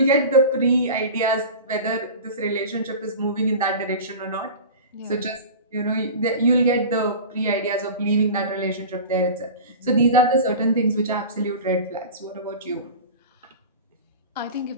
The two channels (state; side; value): inverted; both; correlation -0.33